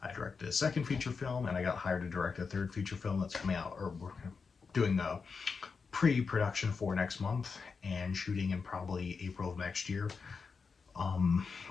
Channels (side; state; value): right; quieter; 5.2 dB